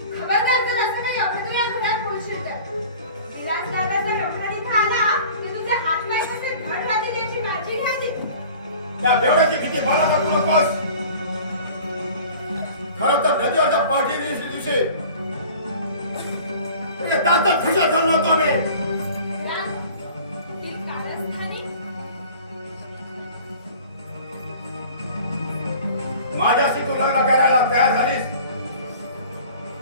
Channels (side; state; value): both; inverted; correlation -0.45